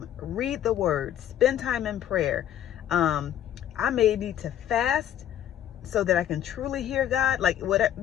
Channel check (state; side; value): quieter; right; 11.0 dB